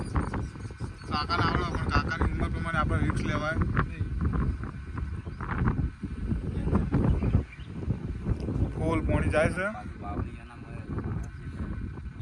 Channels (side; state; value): both; identical; correlation 1.00